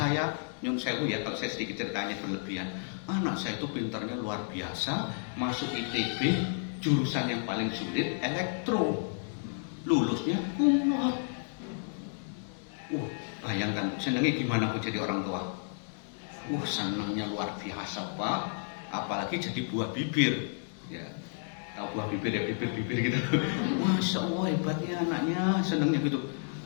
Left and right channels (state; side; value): silent; right; 57 dB below the other